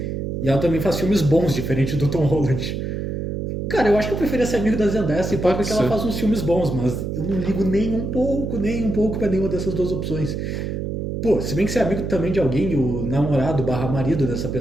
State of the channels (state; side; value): noise; right; hum, 3 dB below the sound